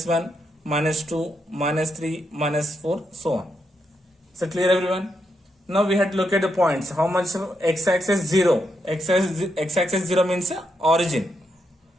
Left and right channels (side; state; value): both; normal; correlation 0.81